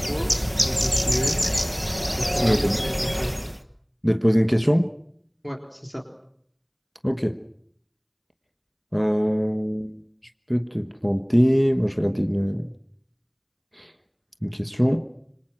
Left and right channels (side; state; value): both; identical; correlation 1.00